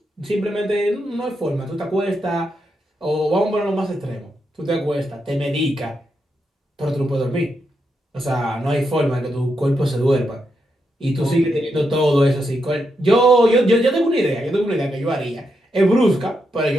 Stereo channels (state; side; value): normal; both; correlation 0.83